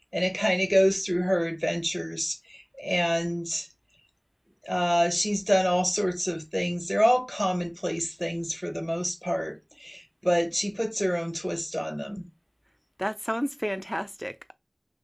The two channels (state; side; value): identical; both; correlation 1.00